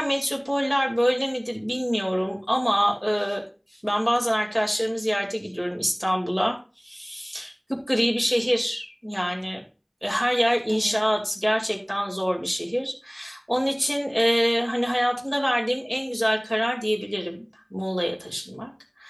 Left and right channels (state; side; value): identical; both; correlation 1.00